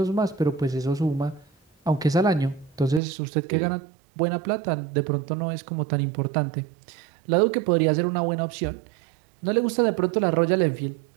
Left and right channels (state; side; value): drops out; left; at 3.0 s